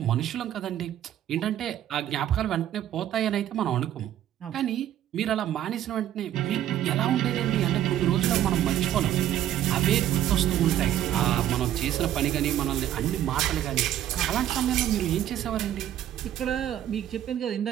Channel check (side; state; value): left; quieter; 11.7 dB